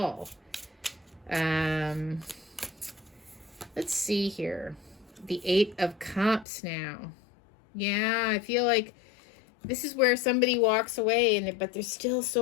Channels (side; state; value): right; drops out; at 6.5 s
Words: Let's see here. The Eight of Cups now. Yeah, I feel like this is where somebody walks away, but there's still